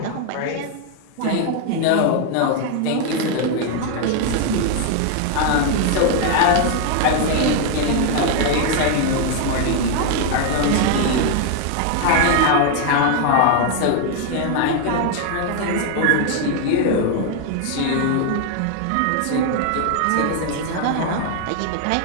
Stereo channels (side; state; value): both; different; correlation 0.00